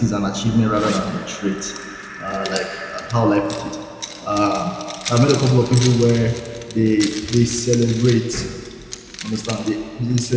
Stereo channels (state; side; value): identical; both; correlation 1.00